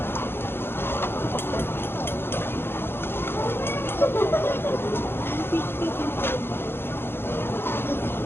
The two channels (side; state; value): right; late; 0.11 ms